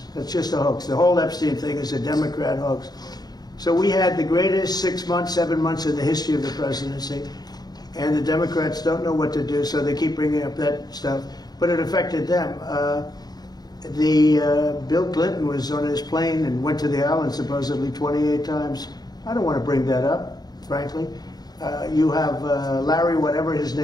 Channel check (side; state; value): right; late; 0.19 ms